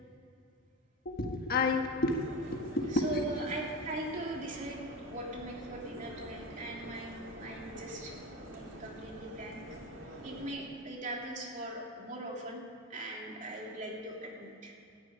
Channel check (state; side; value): normal; both; correlation 0.25